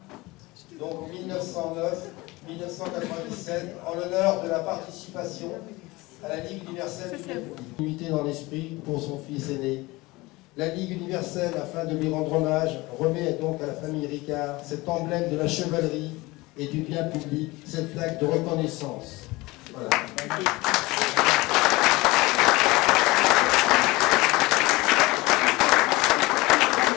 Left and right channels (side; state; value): right; quieter; 21.7 dB